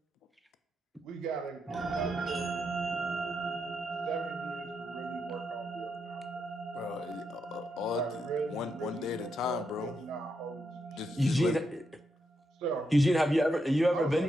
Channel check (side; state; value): both; normal; correlation 0.82